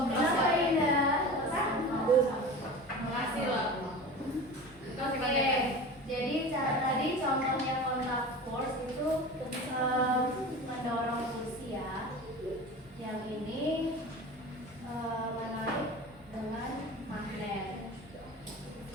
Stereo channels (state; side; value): normal; both; correlation 0.33